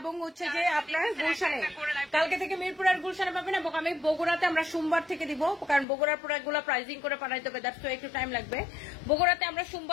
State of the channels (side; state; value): right; drops out; at 5.9 s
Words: হচ্ছে যে আপনার গুলশানে, কালকে থেকে মিরপুর আর গুলশানে পাবেন। এবং আমি বগুড়াতে আমরা সোমবার থেকে দিব, কারণ বগুড়ার প্রোডাক্ট গুলো প্রাইজিং করে পাঠাইতে হবে, দ্যাটস একটু টাইম লাগবে। বগুড়াতে আমরা